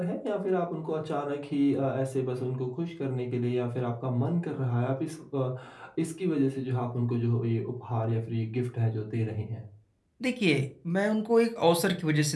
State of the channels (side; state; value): both; identical; correlation 1.00